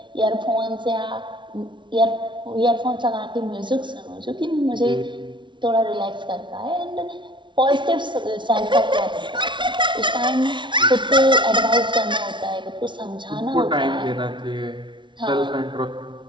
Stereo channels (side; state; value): left; late; 0.24 ms